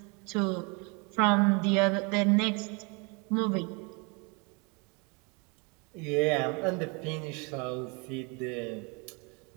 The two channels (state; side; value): quieter; left; 31.6 dB